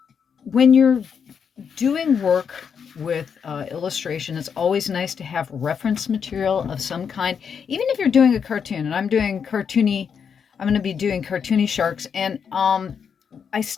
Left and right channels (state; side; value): quieter; right; 6.9 dB